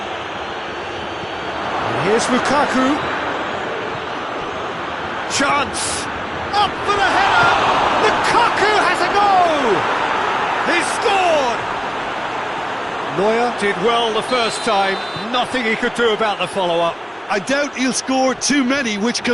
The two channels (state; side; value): identical; both; correlation 1.00